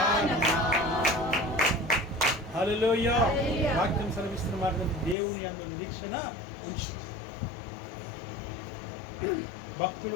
హల్లెలూయా. వాక్యం సెలవిస్తున్న మాట, దేవుని యందు నిరీక్షణ ఉంచు. భక్తులు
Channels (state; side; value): drops out; right; at 5.2 s